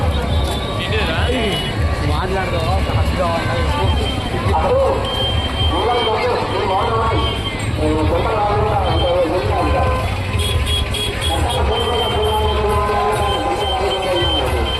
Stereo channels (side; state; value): both; identical; correlation 1.00